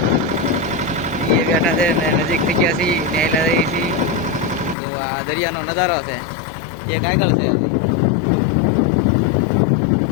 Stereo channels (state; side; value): drops out; right; at 4.8 s